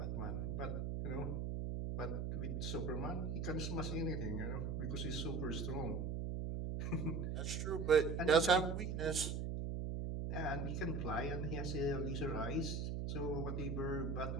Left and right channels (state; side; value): noise; right; hum, 1 dB below the sound